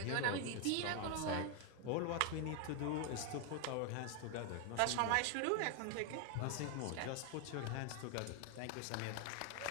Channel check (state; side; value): different; both; correlation 0.01